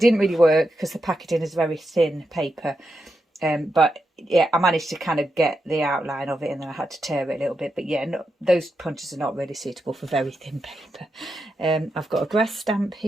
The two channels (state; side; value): normal; both; correlation 0.86